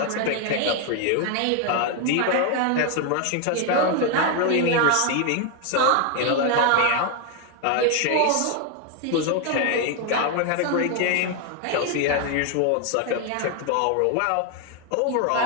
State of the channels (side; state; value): both; different; correlation 0.01